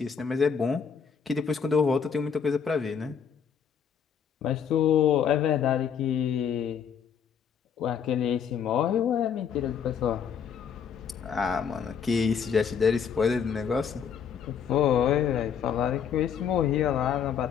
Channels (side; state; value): right; quieter; 7.3 dB